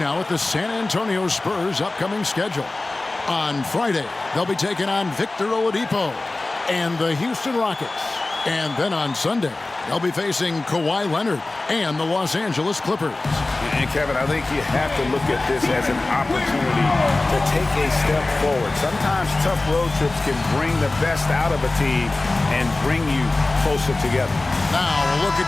at the San Antonio Spurs' upcoming schedule. On Friday, they'll be taking on Victor Oladipo and the Houston Rockets. And then on Sunday, they'll be facing Kawhi Leonard and the Los Angeles Clippers. And Kevin, I think you have to look at this as an opportunity to take a step forward. Sometimes tough road trips can bring the best out of a team and bring you closer together. Now a look at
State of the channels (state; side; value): quieter; right; 3.1 dB